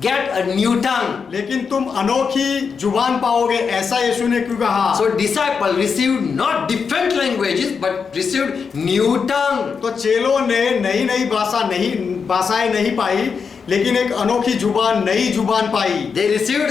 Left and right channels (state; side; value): quieter; right; 5.8 dB